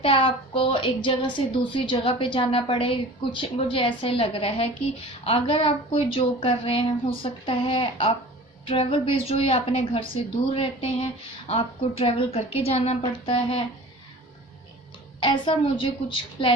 है, आपको एक जगह से दूसरी जगह पे जाना पड़े। कुछ मुझे ऐसे लग रहा है कि अगर आप कोई जॉब कर रहे हैं, हो सकता है आप ट्रैवल बेस्ड हो या अपने घर से दूर रहते हैं, आपको ट्रैवल करके जाना पड़ता है। ऐसा मुझे कुछ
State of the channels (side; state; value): both; normal; correlation 0.41